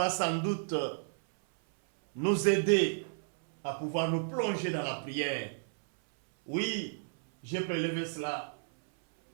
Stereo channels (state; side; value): silent; left; 56 dB below the other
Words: sans doute nous aider à pouvoir nous plonger dans la prière. Oui, j'ai prélevé cela